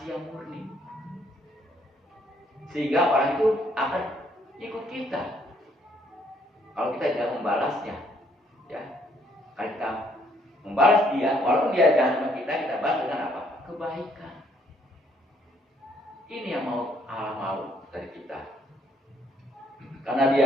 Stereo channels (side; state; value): both; normal; correlation 0.67